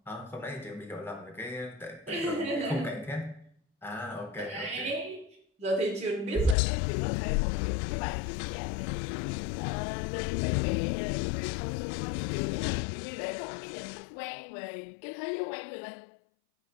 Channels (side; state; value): right; drops out; at 6.6 s